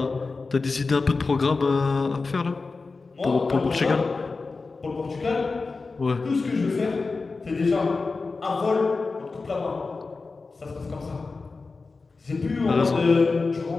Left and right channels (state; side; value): quieter; right; 4.0 dB